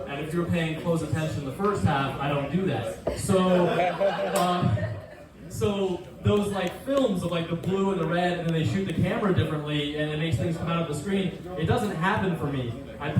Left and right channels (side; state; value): both; identical; correlation 1.00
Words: And if you're paying close attention the first half, I don't do that. So those like films of like the blue and the red, and then they shoot the camera differently, and it makes things come out of the screen. It doesn't happen for me. I